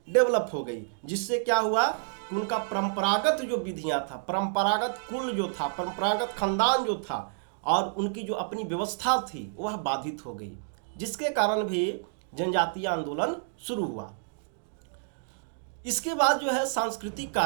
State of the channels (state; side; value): silent; left; digital silence